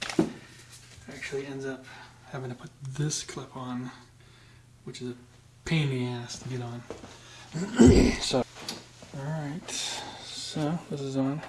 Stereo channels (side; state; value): both; identical; correlation 1.00